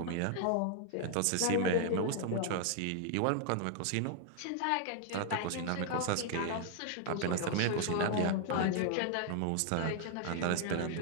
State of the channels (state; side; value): different; both; correlation 0.00